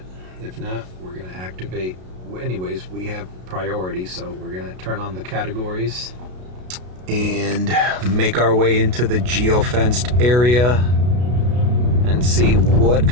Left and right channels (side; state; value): left; late; 33 ms